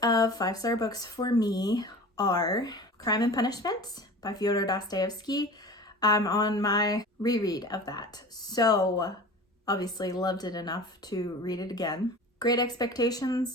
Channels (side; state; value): both; normal; correlation 0.37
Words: of 5-star books for me are Crime and Punishment by Fyodor Dostoevsky. I'm on my reread of that. So obviously loved it enough to read it again. Great